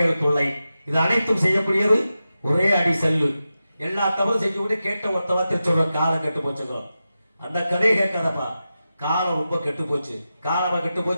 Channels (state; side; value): inverted; both; correlation -0.92